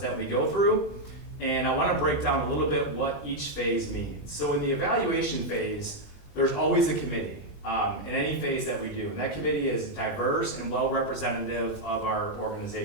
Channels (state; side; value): late; right; 20 ms